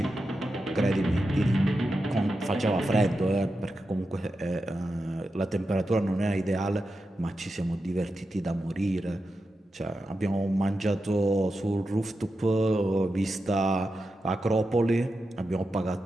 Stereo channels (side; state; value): both; normal; correlation 0.89